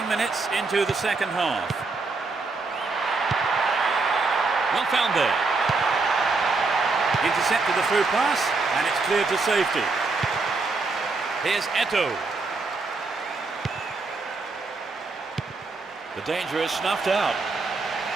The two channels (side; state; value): left; quieter; 3.8 dB